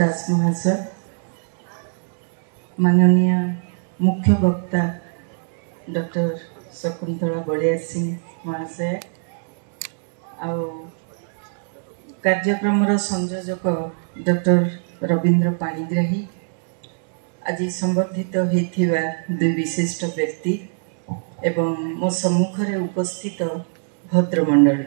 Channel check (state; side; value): silent; left; digital silence